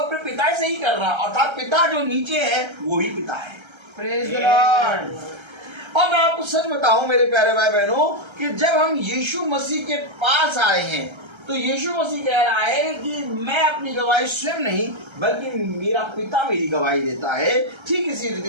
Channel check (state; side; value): late; left; 1.3 ms